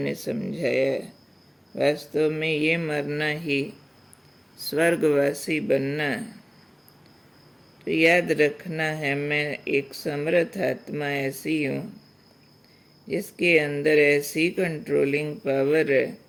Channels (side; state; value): both; identical; correlation 1.00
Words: समझाया है। वास्तव में ये मरना ही स्वर्गवासी बनना है। तो याद रखना है, मैं एक समर्थ आत्मा ऐसी हूँ जिसके अंदर ऐसी कंट्रोलिंग पावर है,